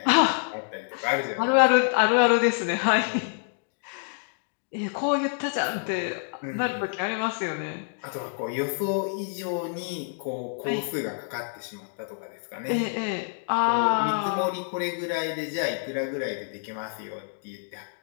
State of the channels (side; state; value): right; silent; digital silence